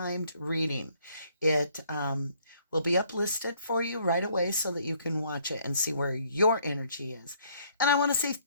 reading. It will be uplisted for you right away so that you can watch it and see where your energy is. And I want to say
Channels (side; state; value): both; inverted; correlation -0.64